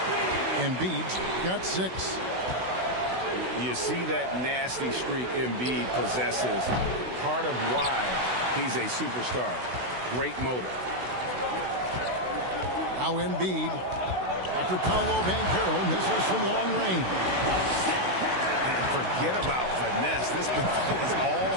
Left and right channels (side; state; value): left; late; 16 ms